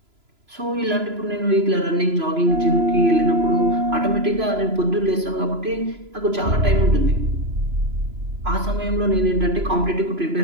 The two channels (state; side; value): late; left; 3.0 ms